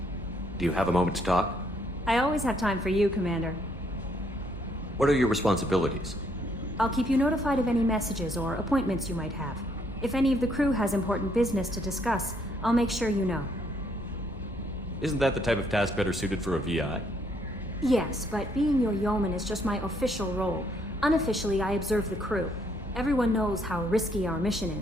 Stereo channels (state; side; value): normal; both; correlation 0.70